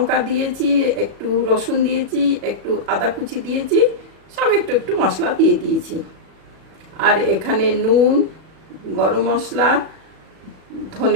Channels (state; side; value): late; left; 37 ms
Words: দিয়েছি, একটু রসুন দিয়েছি, একটু আদা কুচি দিয়েছি, সব একটু একটু মশলা দিয়ে দিয়েছি। আর এখানে নুন, গরম মশলা,